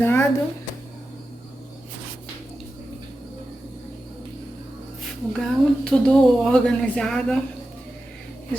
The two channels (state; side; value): normal; both; correlation 0.92